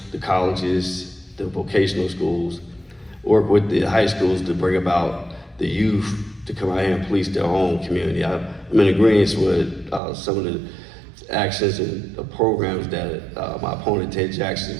the colleges, the vocational schools, work with the high schools to bring about the youth to come out here and police their own community. I'm in agreement with some of the actions and the programs that my opponent, Ted Jackson,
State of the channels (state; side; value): drops out; left; at 10.0 s